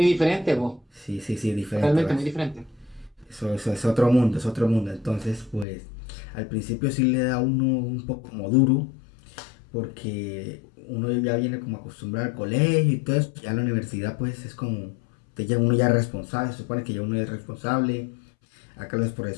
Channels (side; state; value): right; drops out; at 5.7 s